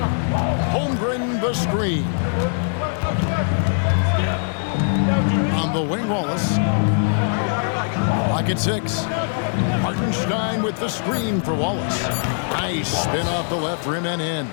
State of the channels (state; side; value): silent; right; 59 dB below the other